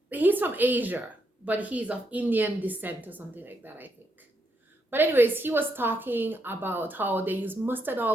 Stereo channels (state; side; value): normal; both; correlation 0.78